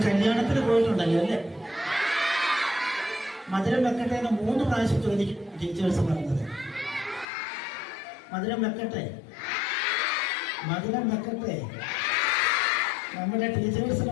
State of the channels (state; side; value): drops out; right; at 7.2 s